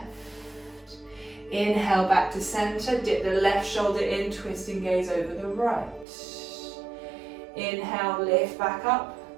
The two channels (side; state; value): left; drops out; at 6.1 s